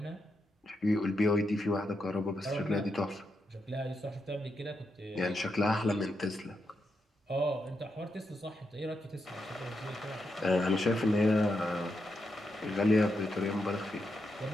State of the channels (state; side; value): normal; both; correlation 0.84